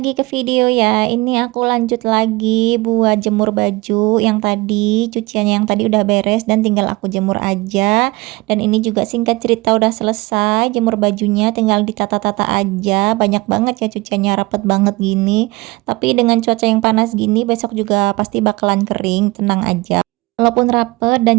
ke video ya. Ini aku lanjut lagi buat jemur baju yang tadi, cuciannya yang tadi udah beres dan tinggal aku jemur aja. Dan ini juga singkat cerita udah selesai jemur bajunya, tinggal ditata-tata aja. Banyak banget ya cuciannya, rapet banget gini. Tapi dengan cuaca yang panas gini besok juga pasti bakalan kering, tenang aja. Walaupun rapet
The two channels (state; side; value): quieter; left; 22.3 dB